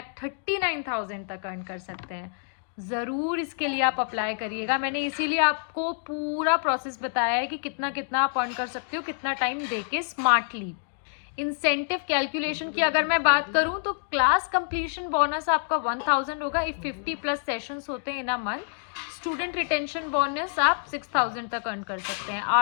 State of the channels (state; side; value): silent; right; digital silence